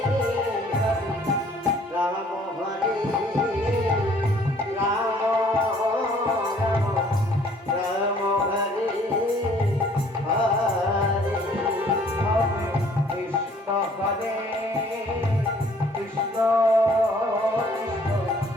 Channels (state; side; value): normal; both; correlation 0.58